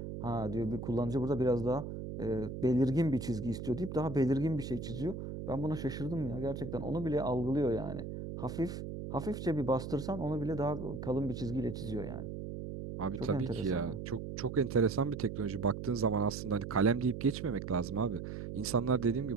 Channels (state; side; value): noise; right; hum, 7 dB below the sound